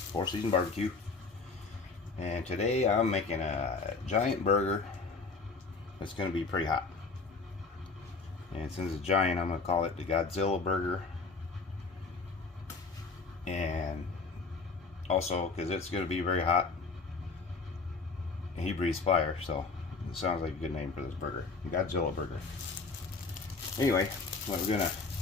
Season Barbecue, and today I'm making a giant burger that's going to be pretty hot. And since it's giant, I'm going to call it the Godzilla burger. And also because it's going to be very hot and he breathes fire, so it sounds like a good name for this burger, the Godzilla burger. Anyway, what we're going to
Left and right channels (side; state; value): right; quieter; 4.2 dB